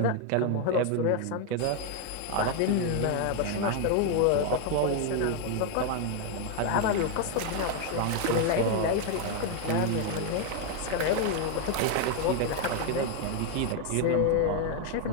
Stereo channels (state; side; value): different; both; correlation 0.00